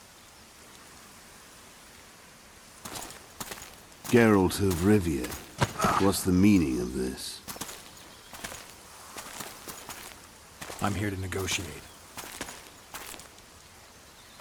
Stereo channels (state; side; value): identical; both; correlation 1.00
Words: Geralt of Rivia. What's the meaning of this? I'm here to negotiate.